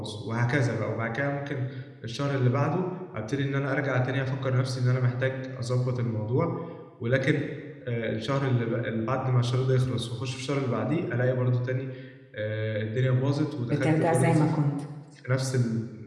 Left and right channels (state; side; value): identical; both; correlation 1.00